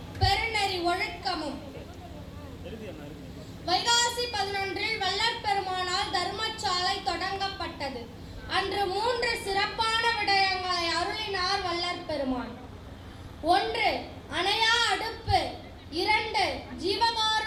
பெருநெறி ஒழுக்கமும். வைகாசி 11 வள்ளற் பெருமானால் தர்மசாலை தொடங்கப்பட்டது. அன்று 3 சிறப்பான விடயங்களை அருளினார் வள்ளற் பெருமான். 1 அணையா அடுப்பு, 2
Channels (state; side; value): identical; both; correlation 1.00